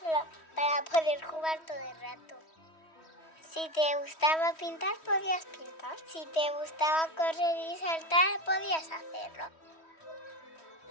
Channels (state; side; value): late; right; 3.1 ms